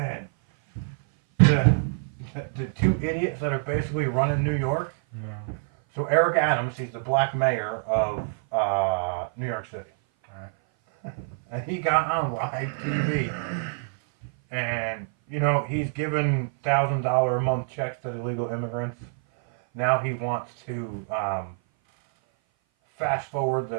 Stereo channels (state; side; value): silent; left; 57 dB below the other